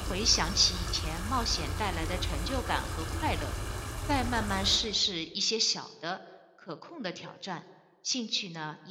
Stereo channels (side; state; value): both; identical; correlation 1.00